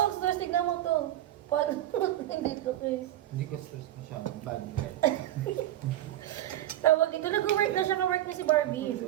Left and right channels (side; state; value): left; quieter; 13.4 dB